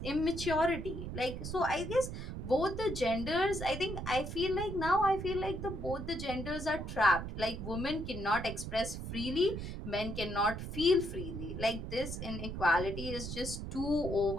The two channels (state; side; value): noise; right; rumble, 6 dB below the sound